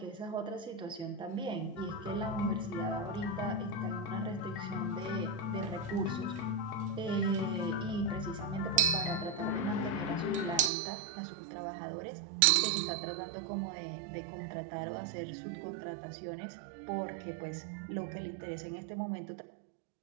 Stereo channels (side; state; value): left; drops out; at 10.7 s